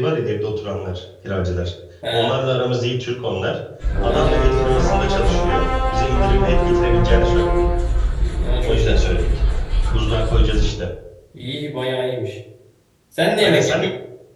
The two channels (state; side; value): identical; both; correlation 1.00